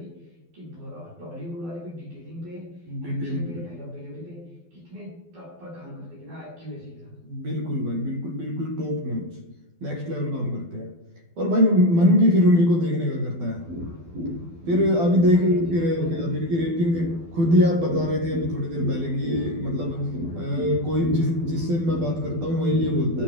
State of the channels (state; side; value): late; left; 12 ms